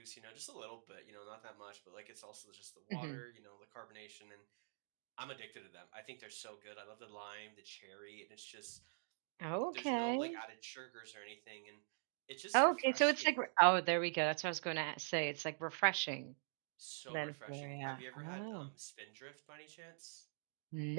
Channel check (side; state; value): left; silent; digital silence